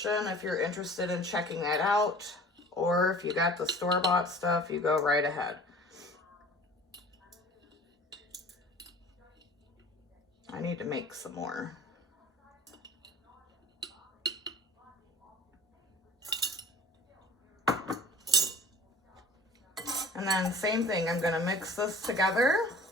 if you're interested in checking that out. Or if you got the store-bought stuff, you go right ahead. I need to make some more. And then same thing, I'm gonna mix this together.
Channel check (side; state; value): both; normal; correlation 0.46